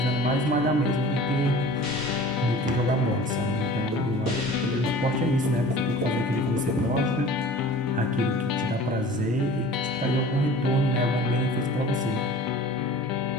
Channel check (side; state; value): both; normal; correlation 0.43